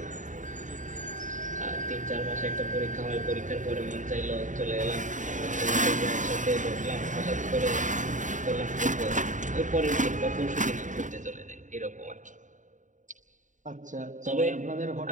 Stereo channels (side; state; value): left; late; 0.36 ms